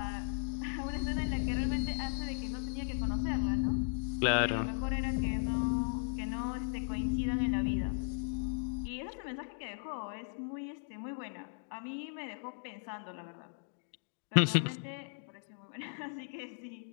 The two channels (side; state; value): right; silent; digital silence